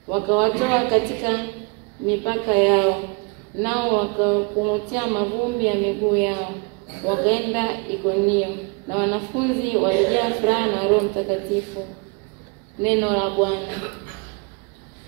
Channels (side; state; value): left; quieter; 32.6 dB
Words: wakawatoa katika mipaka yao, nao wakakung'utia mavumbi ya miguu yao, wakaenda Ikonio, na wanafunzi walijaa furaha na Roho Mtakatifu. Neno la Bwana.